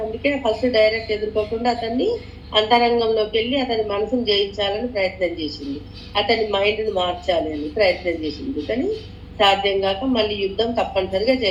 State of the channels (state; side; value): identical; both; correlation 1.00